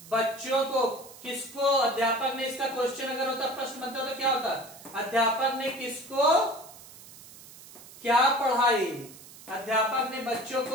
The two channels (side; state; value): right; noise; hiss, 19 dB below the sound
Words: बच्चों को, किसको? अध्यापक ने, इसका क्वेश्चन अगर होता, प्रश्न बनता तो क्या होता? अध्यापक ने किसको क्या पढ़ाई? अध्यापक ने बच्चों